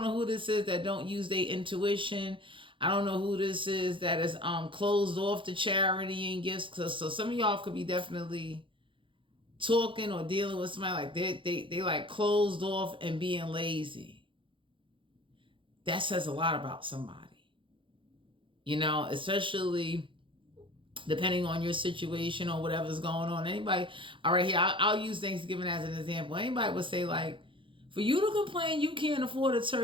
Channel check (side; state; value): left; late; 0.25 ms